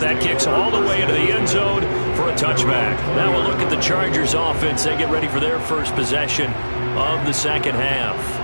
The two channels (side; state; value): both; inverted; correlation -1.00